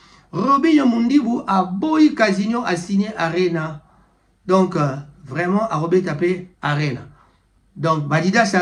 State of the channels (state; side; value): identical; both; correlation 1.00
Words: Robinho Mundibu a boyi Casino a signé Arena. Donc vraiment a Robert tapé Arena. Donc Badidas